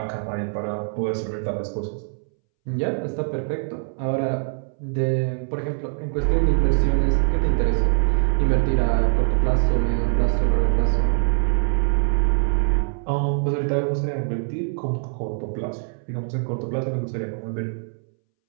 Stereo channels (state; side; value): silent; left; 63 dB below the other